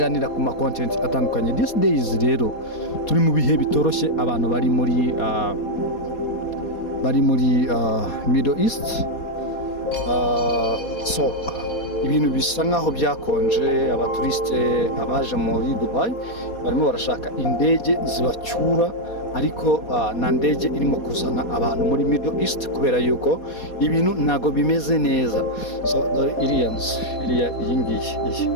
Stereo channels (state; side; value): late; right; 4.2 ms